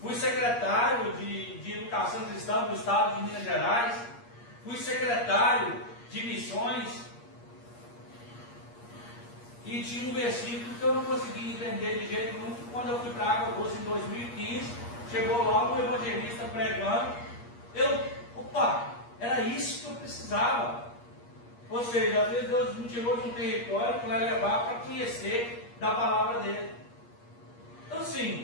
fui secretário de Educação Cristã do Estado de Minas Gerais, fui secretário de missões, e tinha um versículo que eu não conseguia entender de jeito nenhum. Quando eu fui para a Água Doce em 2015, Chegou lá um evangelista pregando, opa, era isso que eu precisava. Ou seja, às vezes Deus me tirou de um território para levar para conhecer da palavra dele. Então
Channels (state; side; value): late; right; 8.5 ms